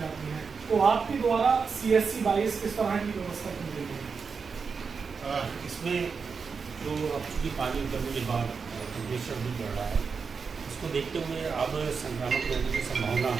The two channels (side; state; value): left; quieter; 5.4 dB